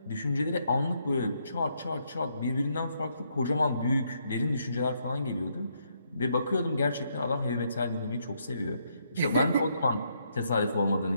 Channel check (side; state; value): both; inverted; correlation -0.75